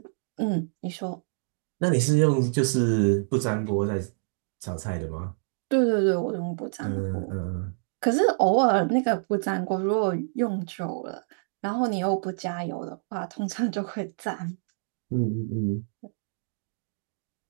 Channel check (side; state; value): left; silent; digital silence